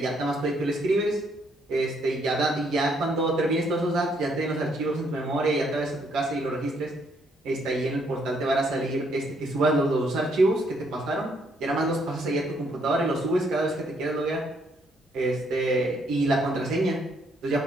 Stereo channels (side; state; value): both; normal; correlation 0.71